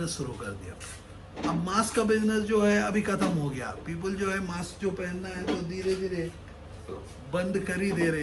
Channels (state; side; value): identical; both; correlation 1.00